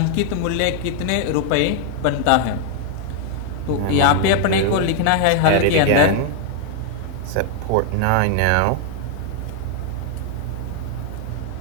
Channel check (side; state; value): both; different; correlation 0.00